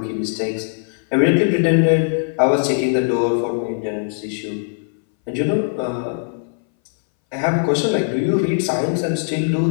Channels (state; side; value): silent; right; 62 dB below the other